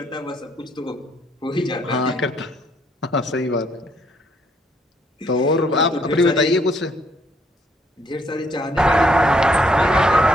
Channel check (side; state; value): both; normal; correlation 0.68